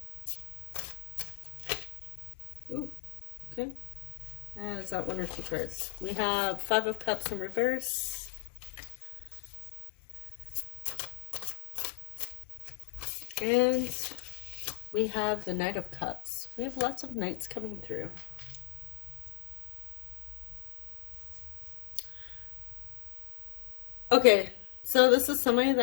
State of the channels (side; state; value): right; silent; 55 dB below the other